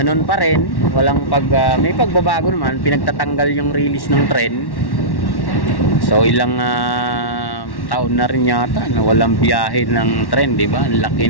pa rin, walang may pagbabago naman, pinagtatanggal yung release ng tren. So ilang taon na rin yata na walang biyahe ng tren, di ba? Ang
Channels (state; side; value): late; right; 1.1 ms